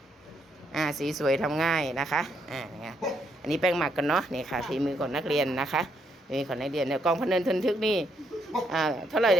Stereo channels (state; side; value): normal; both; correlation 0.75